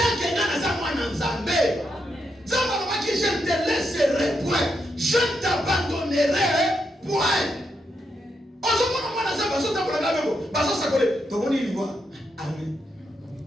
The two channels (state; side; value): normal; both; correlation 0.81